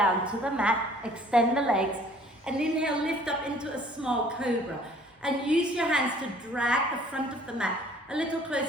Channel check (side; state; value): both; normal; correlation 0.55